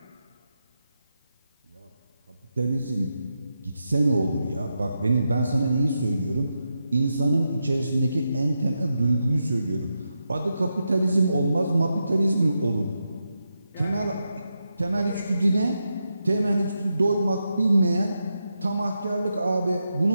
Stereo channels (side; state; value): both; inverted; correlation -0.87